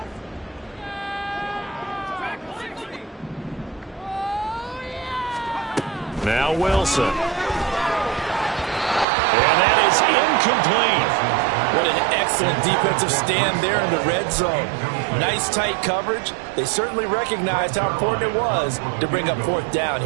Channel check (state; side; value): drops out; left; at 9.1 s